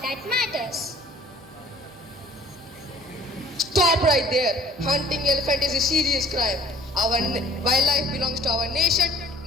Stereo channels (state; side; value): normal; both; correlation 0.53